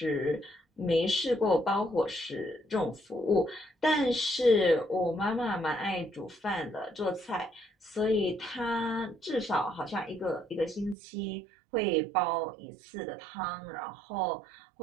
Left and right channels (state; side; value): drops out; left; at 11.0 s